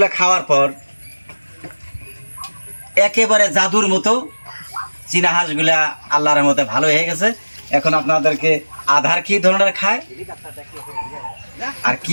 খাওয়ার পর একেবারে জাদুর মতো চীনা হাঁসগুলা আল্লাহর রহমতে ভালো হয়ে গেছে। এখন আপনাদেরকে আধার কি ধরনের খায় আর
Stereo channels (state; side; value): inverted; both; correlation -1.00